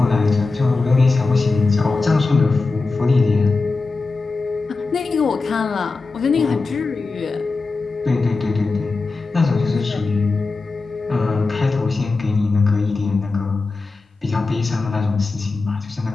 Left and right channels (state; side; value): quieter; right; 3.8 dB